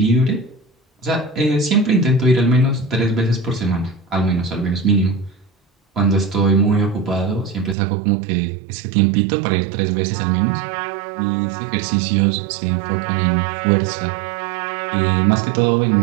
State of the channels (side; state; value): left; drops out; at 7.8 s